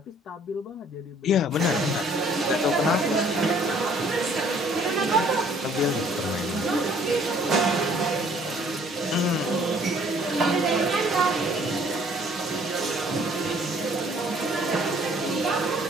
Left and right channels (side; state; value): both; normal; correlation 0.59